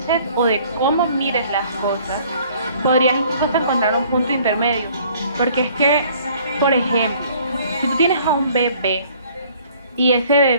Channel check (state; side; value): inverted; both; correlation -0.57